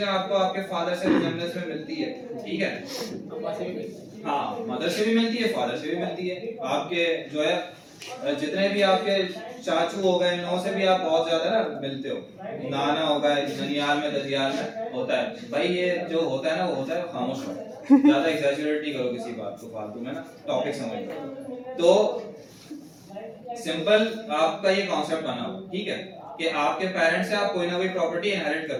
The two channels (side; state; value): both; identical; correlation 1.00